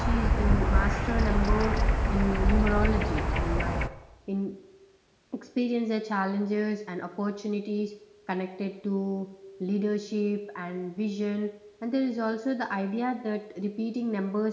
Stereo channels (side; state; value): both; identical; correlation 1.00